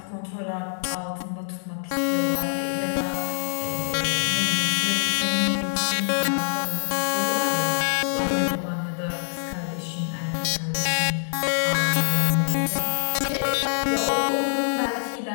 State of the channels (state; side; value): silent; right; digital silence